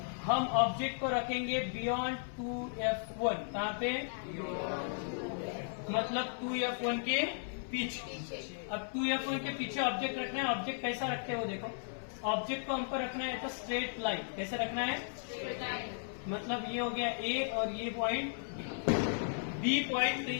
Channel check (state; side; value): silent; right; 54 dB below the other